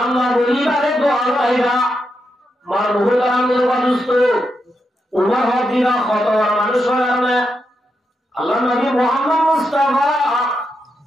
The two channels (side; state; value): both; normal; correlation 0.84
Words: বলিবারে তো আইবা মার বহু কারণে অদুষ্ট উমর হদিরা কত মানুষ কারণে আল্লাহ নবী মুহাম্মদ মুস্তাফা